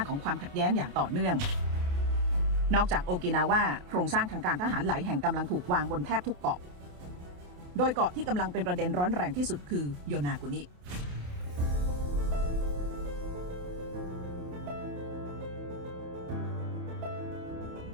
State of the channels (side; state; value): left; late; 28 ms